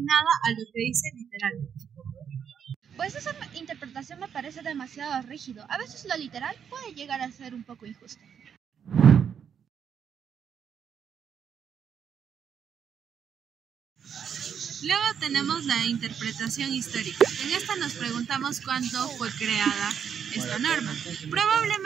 a lo que dice literalmente. Pues esa interpretación me parece demasiado rígido. A veces lo literal puede llegar a ser un poco injusto. Luego tenemos la interpretación histórica. En esta nos preguntamos cuándo fue creada esta norma.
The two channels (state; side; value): quieter; left; 7.8 dB